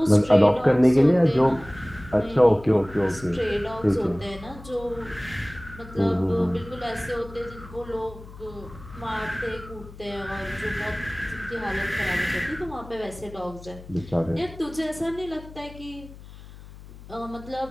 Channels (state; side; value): noise; left; hum, 17 dB below the sound